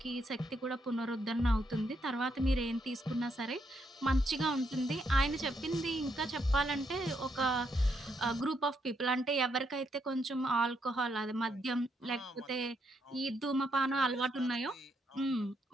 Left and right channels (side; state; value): both; normal; correlation 0.77